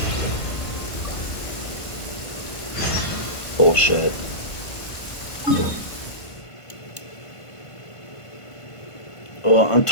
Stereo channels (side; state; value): right; late; 1.5 ms